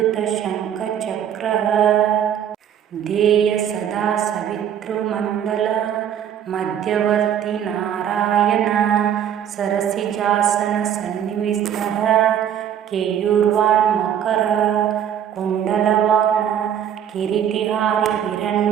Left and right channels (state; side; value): quieter; left; 9.5 dB